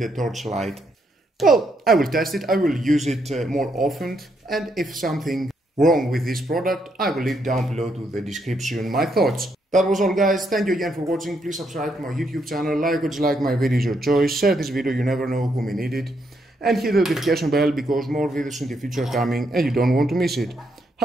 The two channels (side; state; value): both; normal; correlation 0.77